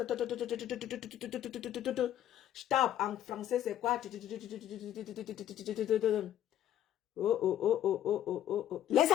Staub en français, c'est quoi? Les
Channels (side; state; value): right; quieter; 11.4 dB